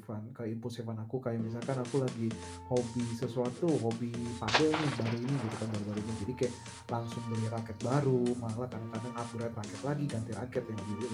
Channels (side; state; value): both; identical; correlation 1.00